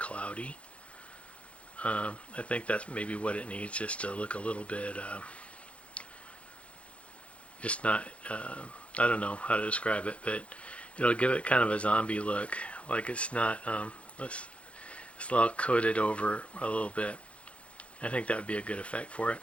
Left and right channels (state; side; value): late; right; 0.062 ms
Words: I think that's maybe what it needs, just to look a little bit just not I don't know how to describe it, but it'll give it kind of a zombie look, like it's not it's all coated over a little bit. I think that would be a good effect for it.